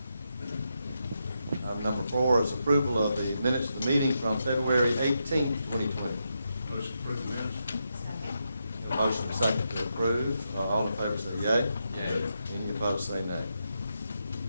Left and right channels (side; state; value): both; inverted; correlation -0.84